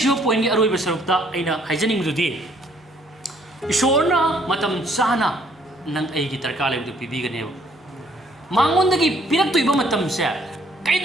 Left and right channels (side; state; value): both; normal; correlation 0.64